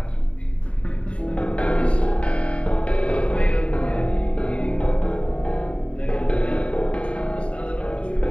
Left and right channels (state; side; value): late; right; 0.062 ms